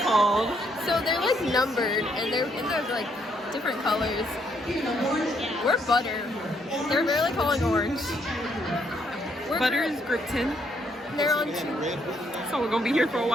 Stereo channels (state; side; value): normal; both; correlation 0.72